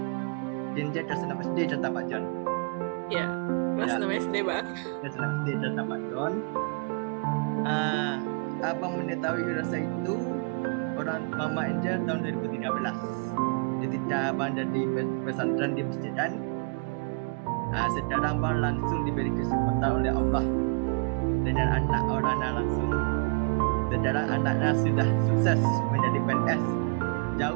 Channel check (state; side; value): quieter; left; 35.2 dB